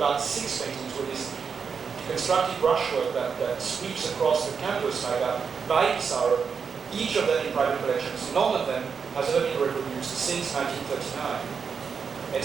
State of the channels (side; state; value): left; quieter; 6.0 dB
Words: 6 paintings with this constructive brushwork that sweeps across the canvas like that by Pissaro, each of them in private collections. None of them has ever been reproduced since 1939. And